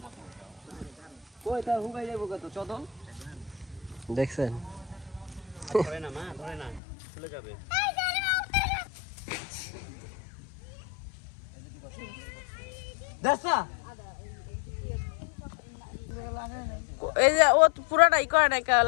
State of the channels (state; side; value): drops out; right; at 6.8 s